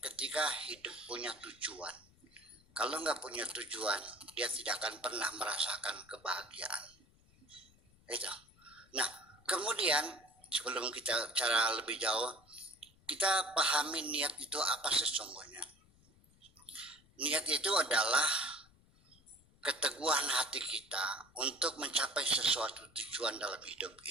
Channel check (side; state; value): left; noise; rumble, 29 dB below the sound